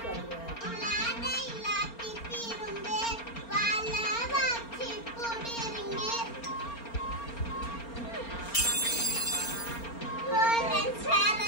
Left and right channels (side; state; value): right; late; 4.3 ms